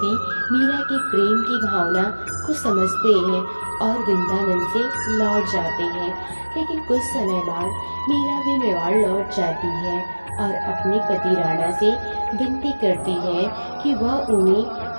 मीरा के प्रेम की भावना को समझते हैं और वृंदावन से लौट जाते हैं। लेकिन कुछ समय बाद मीरा भी मेवाड़ लौट जाती है और अपने पति राणा से विनती करती है कि वह उन्हें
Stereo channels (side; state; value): both; inverted; correlation -1.00